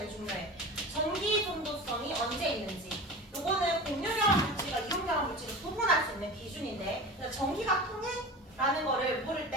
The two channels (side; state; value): both; normal; correlation 0.32